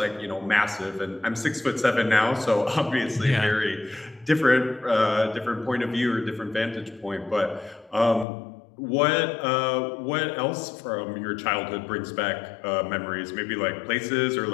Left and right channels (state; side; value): drops out; right; at 8.2 s